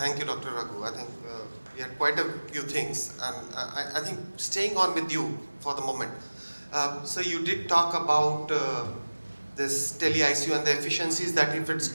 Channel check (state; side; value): inverted; both; correlation -1.00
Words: you, Dr. Raghu. I think we had quite a few things, and I think staying on with you for the moment. So you did talk about this tele-ICU and the efficiencies that if it's